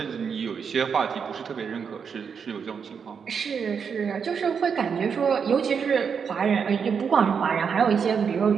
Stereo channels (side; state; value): left; quieter; 6.5 dB